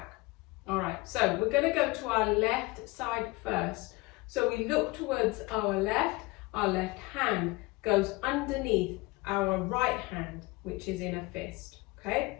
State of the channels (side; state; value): right; quieter; 22.9 dB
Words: All right, so we're gonna go to our left side first. So we look towards our left hand goes underneath our right hand, which is in a fist, okay?